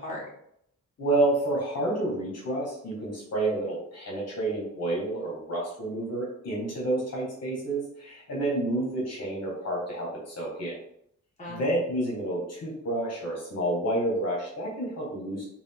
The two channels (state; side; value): normal; both; correlation 0.34